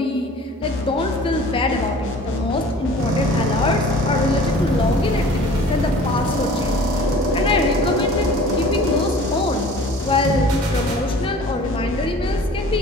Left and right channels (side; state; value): both; normal; correlation 0.46